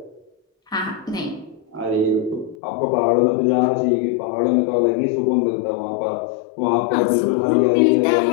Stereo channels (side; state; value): right; drops out; at 2.6 s